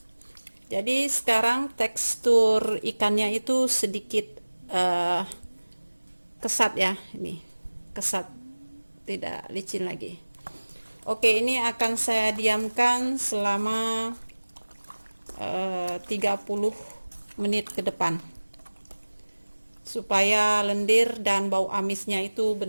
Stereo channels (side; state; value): both; inverted; correlation -1.00